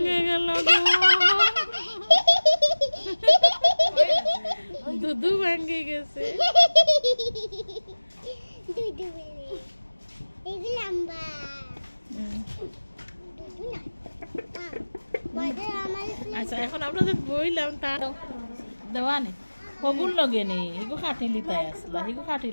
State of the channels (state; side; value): inverted; both; correlation -1.00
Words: গেল দুধু ভাঙ্গে গেছে আচ্ছা এখন আপনাদের বইলাম তার দেওয়া নেই হগুন লগে নেই হিগু খাটিলি তাই আসলা হিগু